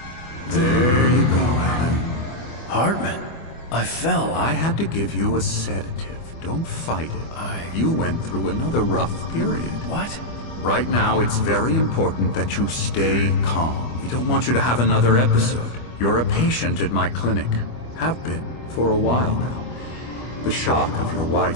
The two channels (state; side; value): late; right; 25 ms